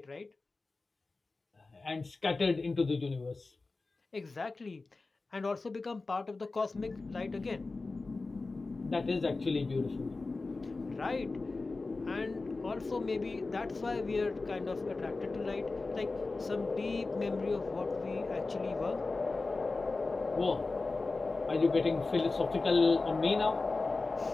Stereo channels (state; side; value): quieter; right; 3.6 dB